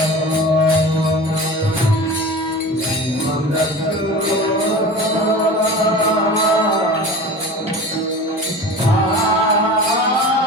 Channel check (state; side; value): normal; both; correlation 0.35